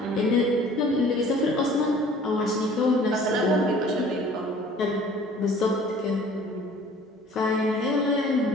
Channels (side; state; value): both; normal; correlation 0.51